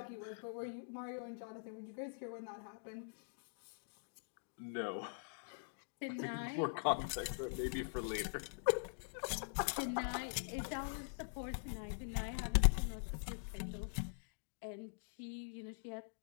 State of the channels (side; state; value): right; silent; digital silence